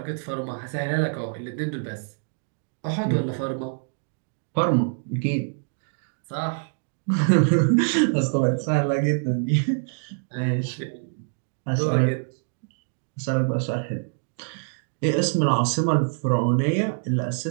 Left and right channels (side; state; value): left; silent; digital silence